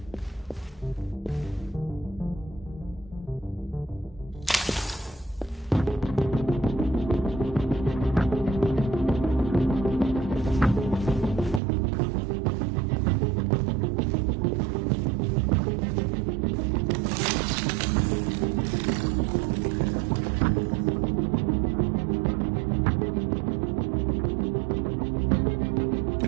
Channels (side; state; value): left; drops out; at 11.6 s